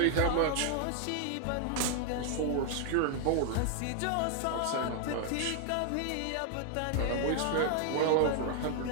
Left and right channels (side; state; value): both; different; correlation 0.00